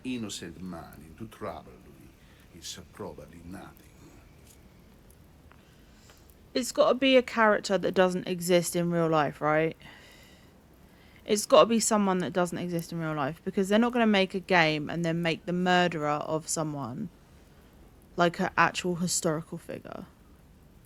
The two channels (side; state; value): both; identical; correlation 1.00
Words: innocent man into trouble, Louis. It's probably nothing. It's got to be a character that doesn't exist in real life, right? It's got to be someone that doesn't exist in real life, because they're not going to make a game and then make the murderer of someone like an actual historical figure.